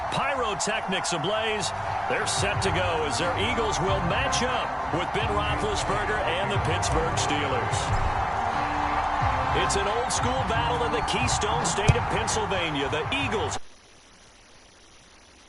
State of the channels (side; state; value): both; identical; correlation 1.00